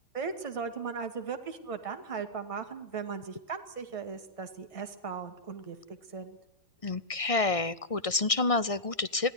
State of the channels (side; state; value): right; late; 1.6 ms